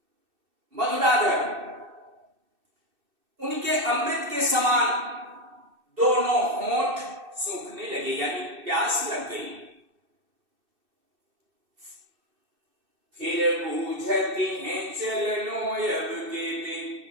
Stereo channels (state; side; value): late; left; 2.6 ms